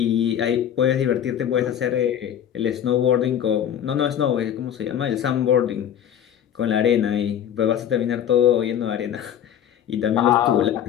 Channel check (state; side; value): quieter; right; 9.7 dB